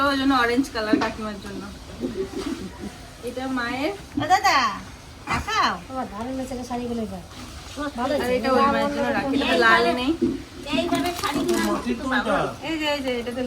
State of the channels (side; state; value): both; identical; correlation 1.00